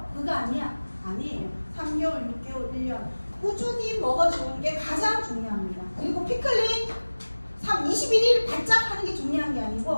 그거 아니야. 아니에요. 3개월, 6개월, 1년 꾸준히 먹어주는 게 가장 중요합니다. 그리고 피클린 21일 바짝 하는 게 중요한 게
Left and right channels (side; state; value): both; inverted; correlation -1.00